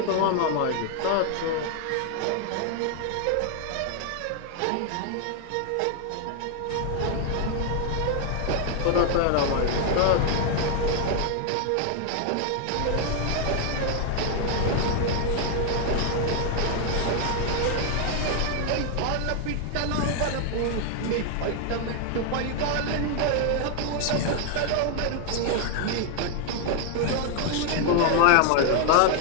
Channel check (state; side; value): different; both; correlation 0.00